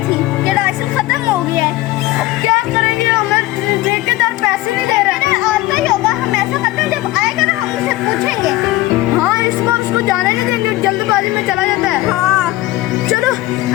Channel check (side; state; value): right; quieter; 17.6 dB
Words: थी कि राशन खत्म हो गया है। अब क्या करेंगे, हमें ठेकेदार पैसे नहीं दे रहे। आता ही होगा, हम ऐसा करते हैं, जब आएगा ना हम उसे पूछेंगे। हाँ, इस बार उसको जाने नहीं देंगे, जल्दबाजी में चला जाता है। हाँ चलो